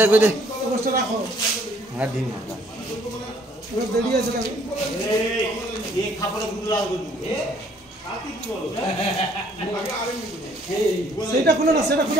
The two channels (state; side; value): normal; both; correlation 0.62